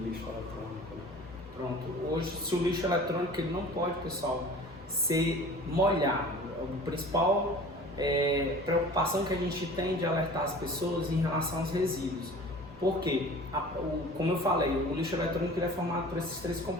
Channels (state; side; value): noise; right; rumble, 25 dB below the sound